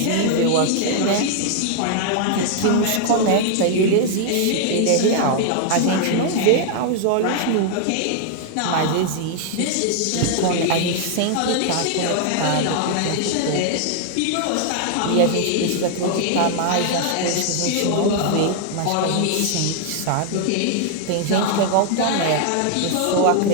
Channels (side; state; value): both; different; correlation 0.00